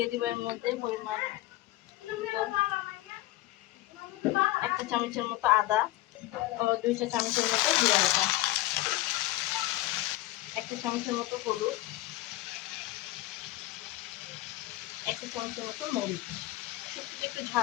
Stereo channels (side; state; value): right; quieter; 17.2 dB